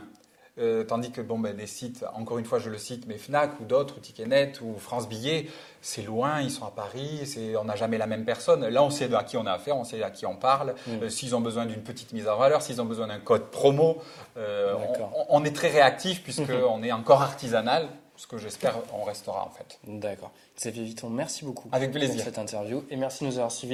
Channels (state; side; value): identical; both; correlation 1.00